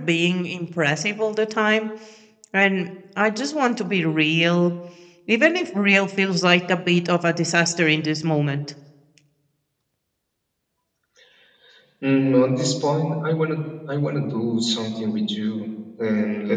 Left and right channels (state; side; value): identical; both; correlation 1.00